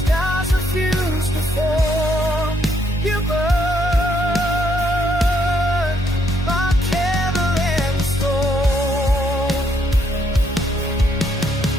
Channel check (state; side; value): normal; both; correlation 0.72